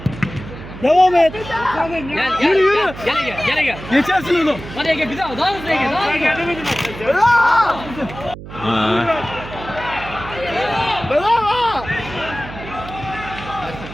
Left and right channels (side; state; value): right; noise; hum, 13 dB below the sound